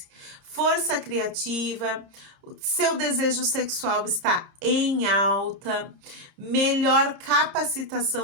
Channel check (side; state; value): left; late; 30 ms